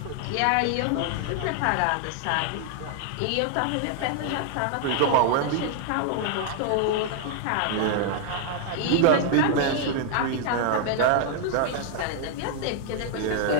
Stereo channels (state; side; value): different; both; correlation 0.00